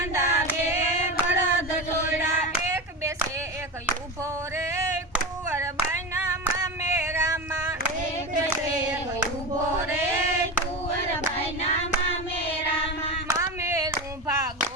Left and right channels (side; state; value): both; normal; correlation 0.23